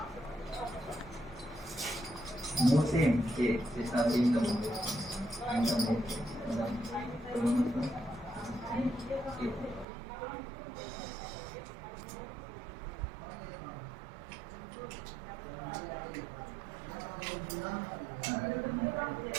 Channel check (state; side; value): drops out; left; at 9.9 s